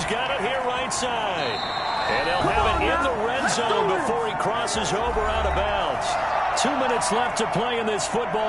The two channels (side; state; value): both; identical; correlation 1.00